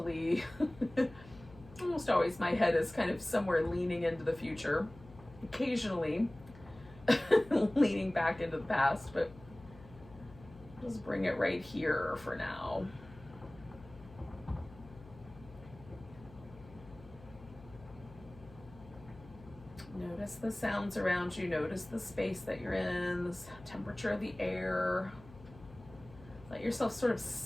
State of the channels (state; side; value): noise; left; hum, 20 dB below the sound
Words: Almost always my head is kind of somewhere leaning into the future. Occasionally leaning back into the past, but just bring it right here for now. Notice the sounds around you. Notice the space that you're in, the temperature of the air. Let yourself sort of